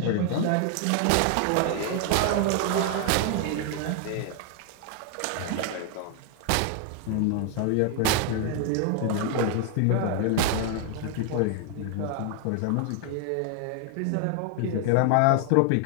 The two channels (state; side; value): different; both; correlation 0.00